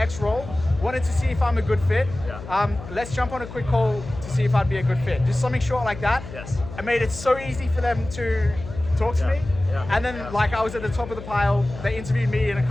role. Wanted to see if I'm a good fit. Yeah. Let's jump on a quick call to see if I'd be a good fit. Just something short like that. Yes. I made it so easy for them to talk to Yeah, me. yeah, And then yeah. like I was at the top of the pile. They interviewed me and a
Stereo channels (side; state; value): left; noise; hum, 12 dB below the sound